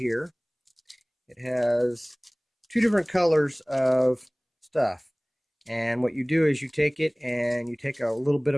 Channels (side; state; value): both; identical; correlation 1.00